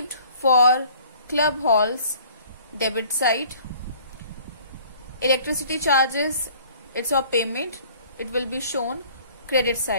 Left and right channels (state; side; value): inverted; both; correlation -0.53